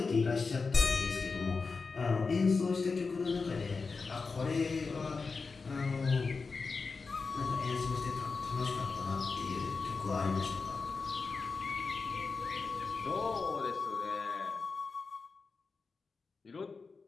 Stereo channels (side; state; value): right; quieter; 4.5 dB